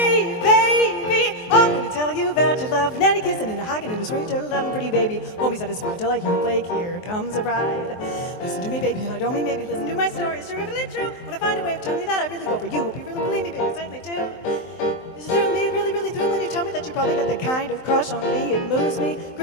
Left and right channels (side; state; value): right; late; 23 ms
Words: baby, I'm gonna tell you about your love. Nanny kissing and a hugging and a sweet little loving pretty baby. Won't be satisfied till I hear Blake, here comes a bride. Listen to me, baby, and I don't mean maybe. Listen to my story, it's terrifically true. When I find a way of telling you that I really go for you. Hope you really believe me, baby, I certainly do. Does it thrill me, really, really thrill when you tell me that you probably got the kind of crush on me? It moves me,